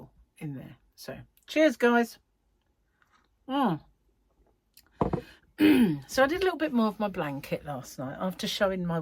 in there. So cheers, guys. So I did a little bit more of my blanket last night after showing my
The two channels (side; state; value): both; identical; correlation 1.00